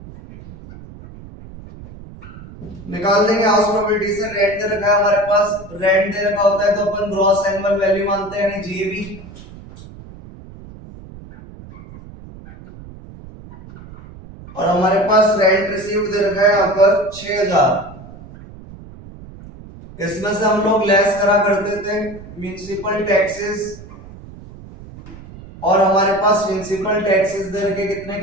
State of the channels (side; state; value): right; noise; rumble, 17 dB below the sound